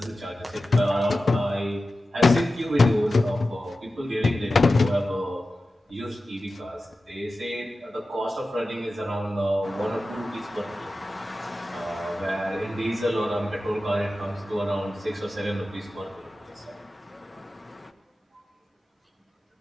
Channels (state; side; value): normal; both; correlation 0.94